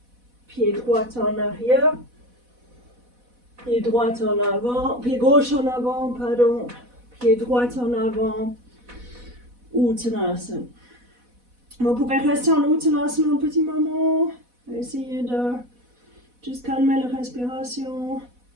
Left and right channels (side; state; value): left; late; 4.1 ms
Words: Pied droit en arrière. Pied droit en avant. Pied gauche en avant, pardon. Pied droit en avant. Uttanasana. Vous pouvez rester en Uttanasana un petit moment. Essayez de juste calmer la respiration.